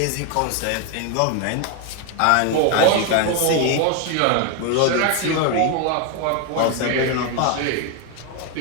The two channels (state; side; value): different; both; correlation 0.01